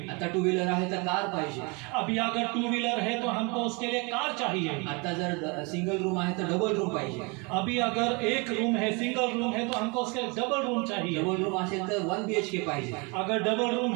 आता टू व्हीलर आहे तर कार पाहिजे. अभी अगर टू व्हीलर है तो हमको उसके लिए कार चाहिए. आता जर सिंगल रूम आहे तर डबल रूम पाहिजे. अभी अगर एक रूम है, सिंगल रूम है, तो हमको उसके डबल रूम चाहिए. डबल रूम असेल तर 1 BHK पाहिजे. अगर डबल रूम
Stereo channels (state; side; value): quieter; left; 30.0 dB